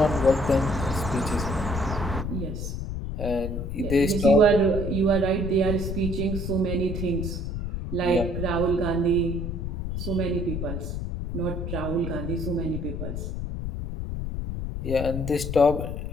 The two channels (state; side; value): noise; left; rumble, 4 dB below the sound